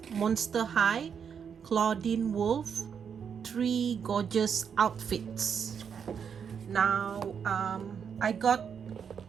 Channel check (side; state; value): left; quieter; 7.2 dB